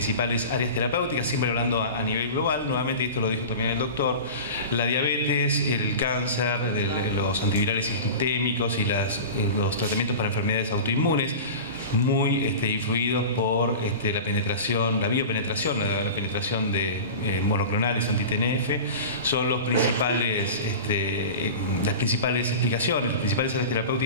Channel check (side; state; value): both; inverted; correlation -0.32